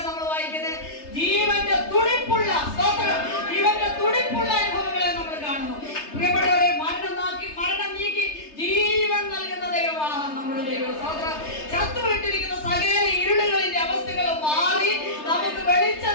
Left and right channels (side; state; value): right; late; 3.3 ms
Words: നമ്മൾ വായിക്കുന്നത്? ജീവന്റെ തുടിപ്പുള്ള ജീവന്റെ തുടിപ്പുള്ള അനുഭവങ്ങളെ നമ്മൾ കാണുന്നു. പ്രിയപ്പെട്ടവരെ, മരണം നീക്കി ജീവൻ നൽകുന്ന ദൈവമാണ് നമ്മുടെ ദൈവം. ചത്തുവിട്ടിരിക്കുന്ന സകല ഇരുളുകളിന്റെ അവസ്ഥകൾ മാറി നമുക്ക്